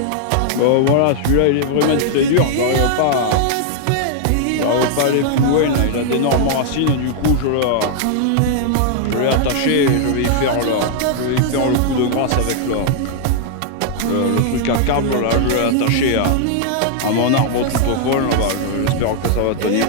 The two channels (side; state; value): both; different; correlation -0.01